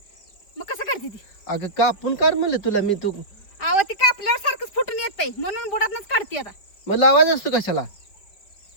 मग कसं काढते ती? अगं कापून काढ म्हणलं तुला मी. तू आव ती कापल्यावर सारखंच फुटून येतंय म्हणून बोडातच काढते आता. मग लावायचं असतो कशाला?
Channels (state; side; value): late; right; 5.0 ms